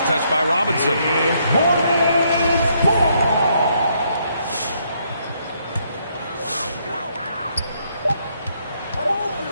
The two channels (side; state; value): both; inverted; correlation -0.72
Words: touch by Robinson.